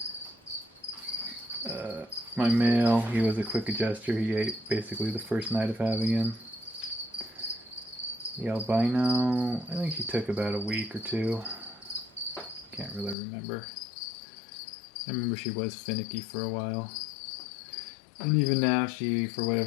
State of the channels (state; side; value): drops out; right; at 13.2 s